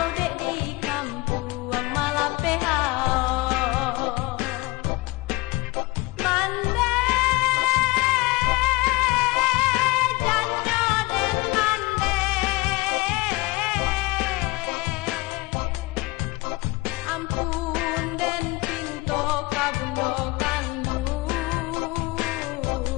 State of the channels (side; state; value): right; quieter; 22.7 dB